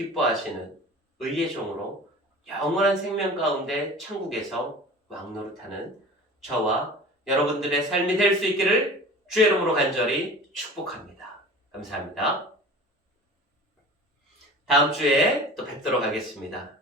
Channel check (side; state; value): both; normal; correlation 0.39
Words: 의의 종으로 영원한 생명 가운데 천국에서 왕노릇하는 저와 여러분들의 삶이 될 수 있기를 주의 이름으로 간절히 축복합니다. 감사합니다. 다음 주에 또 뵙도록 하겠습니다.